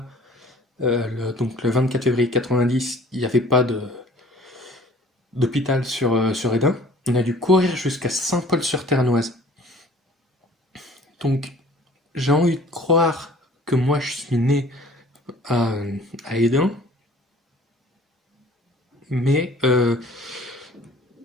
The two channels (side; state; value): both; normal; correlation 0.50